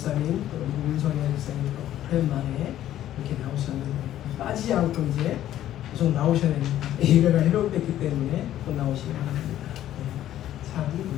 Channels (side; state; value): right; quieter; 12.4 dB